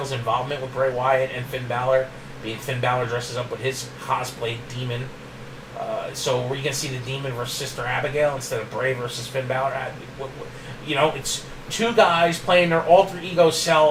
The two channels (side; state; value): both; identical; correlation 1.00